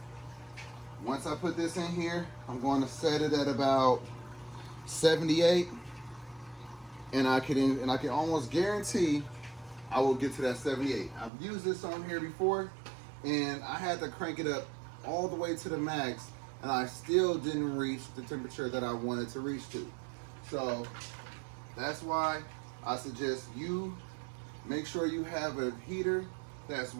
once I put this in here, I'm going to set it at about 78, and I can almost guarantee I will get to that 78. I've used this on here before, and I had to crank it up all the way to the max, and I still didn't reach the temperature that I wanted to reach to. So that's why I suggest you make sure you have a heater that's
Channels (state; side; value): drops out; left; at 11.3 s